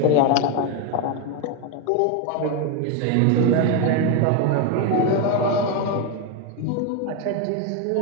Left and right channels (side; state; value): both; different; correlation 0.02